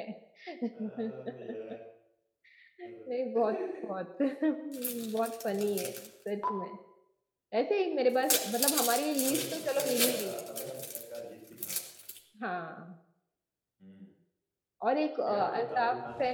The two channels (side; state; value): both; identical; correlation 1.00